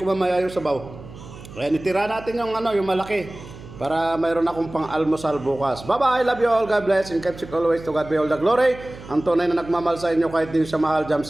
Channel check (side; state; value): right; noise; hum, 16 dB below the sound